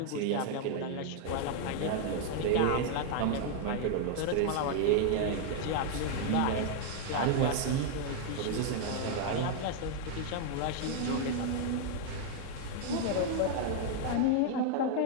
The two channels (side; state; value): both; different; correlation 0.00